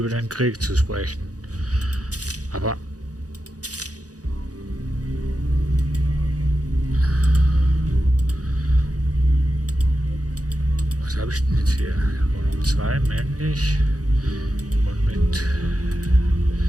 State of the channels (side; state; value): left; late; 0.67 ms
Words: den Krieg zu sprechen. Aber was habe ich denn jetzt hier? Wohnung 2, männlich. Und mit